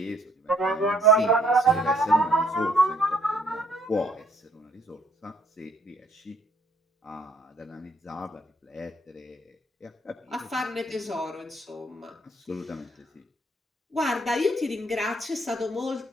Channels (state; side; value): normal; both; correlation 0.65